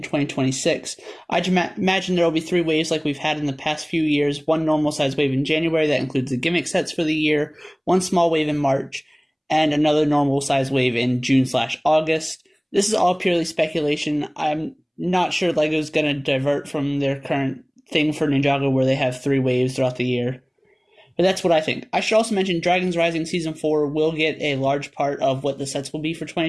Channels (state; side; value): identical; both; correlation 1.00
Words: 2026. I'd imagine there will be 3 waves like we've had in the past few years, 1 normal size wave in January that includes the gimmick sets for the year, 1 small wave in March, and another normal size wave in June/August. This is all purely speculation. I'm not sure LEGO's going to divert from their current thing for Ninjago where they have 3 waves throughout the year. But that's what I think. I should also mention Dragons Rising Season 4 will get a large part of what the sets will be for